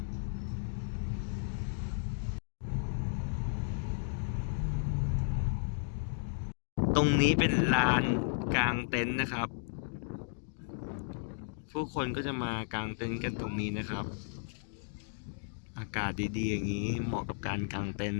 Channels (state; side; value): silent; right; digital silence